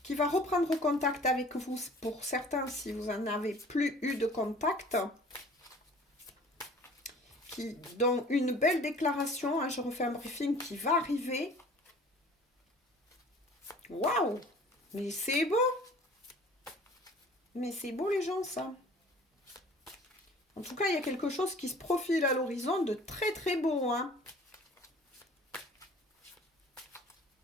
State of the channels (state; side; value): normal; both; correlation 0.48